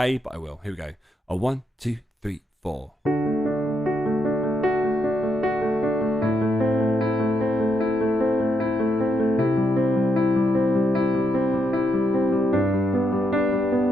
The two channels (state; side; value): normal; both; correlation 0.80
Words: but I will. Here we go. 1, 2, 3, 4.